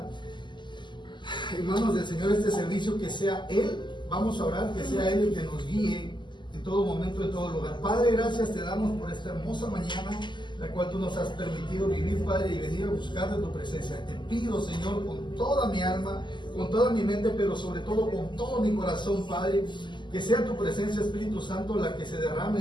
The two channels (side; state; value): right; late; 0.22 ms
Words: en manos del Señor este servicio, que sea Él, vamos a orar, que sea Él el que nos guíe en todo momento, en todo lugar. Padre, gracias te damos por esta hermosa mañana, la cual tú nos has permitido vivir, Padre, y venir a buscar de tu presencia. Te pido, Señor, con toda mi alma, con toda mi mente, pero sobre todo con todo mi corazón, Padre, que sea tu presencia, Espíritu Santo, la que se derrame